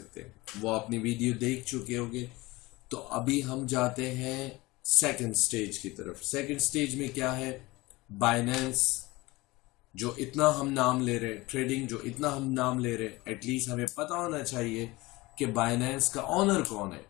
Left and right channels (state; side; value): quieter; right; 21.2 dB